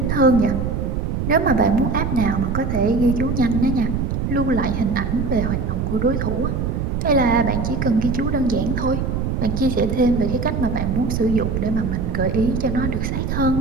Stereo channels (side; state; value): right; noise; rumble, 1 dB below the sound